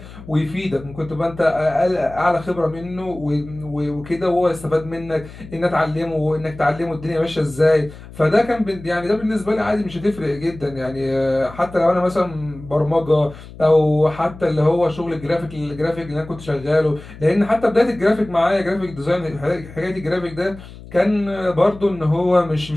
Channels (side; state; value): left; noise; hum, 17 dB below the sound